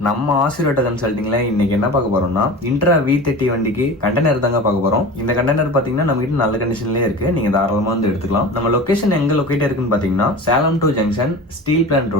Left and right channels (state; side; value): normal; both; correlation 0.34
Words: நம்ம ஆசிரியர் கன்சல்டிங்ல இன்னைக்கு என்ன பார்க்க போறோம்னா இன்ட்ரா V30 வண்டிக்கு கண்டெய்னர் தாங்க பார்க்க போறோம். இந்த கண்டெய்னர் பாத்தீங்கன்னா நம்ம கிட்ட நல்ல கண்டிஷன்லயே இருக்கு, நீங்க தாராளமா வந்து எடுத்துக்கலாம். நம்ம லொகேஷன் எங்க லொகேட் இருக்குன்னு பாத்தீங்கன்னா Salem to junction steel plant